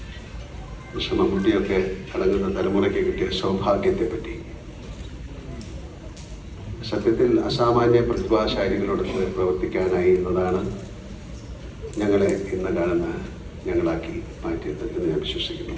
മമ്മൂട്ടിയൊക്കെ അടങ്ങുന്ന തലമുറയ്ക്ക് കിട്ടിയ സൗഭാഗ്യത്തെ പറ്റി. സത്യത്തിൽ അസാമാന്യ പ്രതിഭാശാലികളോടൊത്ത് പ്രവർത്തിക്കാനായി എന്നതാണ് ഞങ്ങളെ ഇന്ന് കാണുന്ന ഞങ്ങളാക്കി മാറ്റിയത് എന്ന് ഞാൻ വിശ്വസിക്കുന്നു.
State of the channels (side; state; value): both; identical; correlation 1.00